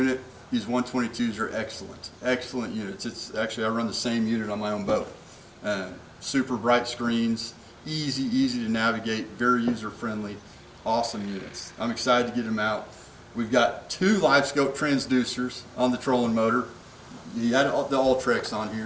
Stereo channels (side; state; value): both; identical; correlation 1.00